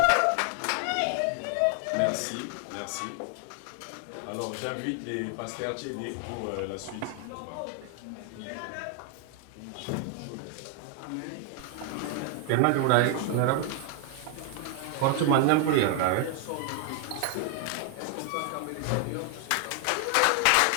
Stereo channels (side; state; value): both; different; correlation 0.00